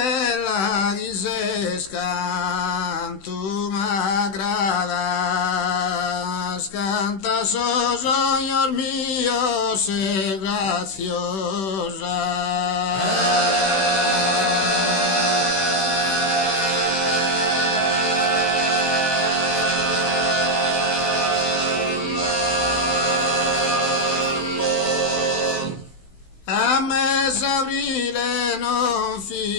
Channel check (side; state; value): right; late; 16 ms